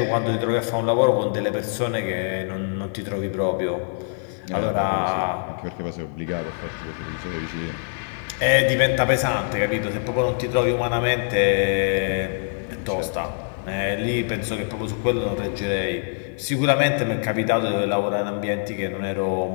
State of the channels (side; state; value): right; silent; digital silence